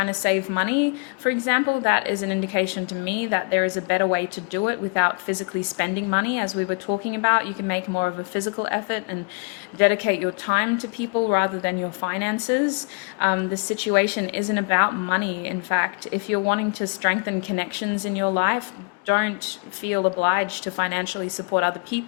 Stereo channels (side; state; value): right; quieter; 34.4 dB